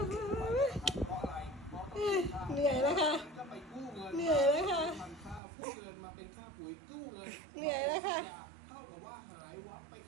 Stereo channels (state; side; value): drops out; left; at 5.4 s